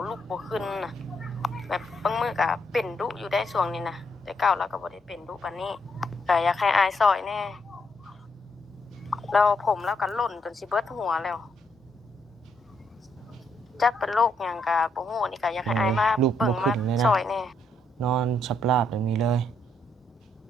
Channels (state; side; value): normal; both; correlation 0.75